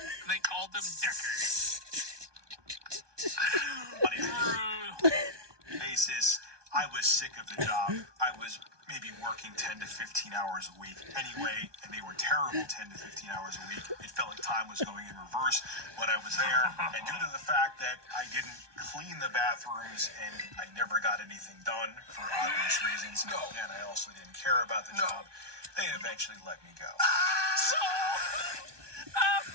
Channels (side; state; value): left; late; 1.2 ms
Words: and they called him Dickers. On a Brutal. basis, I was sick of the job. I was maybe working 10 to 15 hours a week anyway, and they were terrible 10 to 15 hours a week. It felt like time was going in reverse when I was there, and due to the fact that I didn't clean the bathrooms and I never got anything done for obvious reasons, and I also didn't care about the job, they eventually let me go. So,